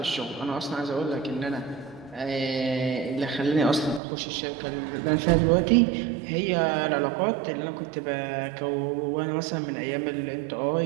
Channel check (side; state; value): left; drops out; at 4.0 s